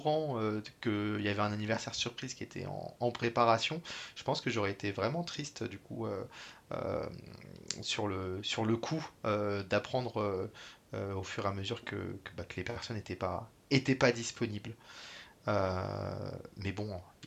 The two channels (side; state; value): both; identical; correlation 1.00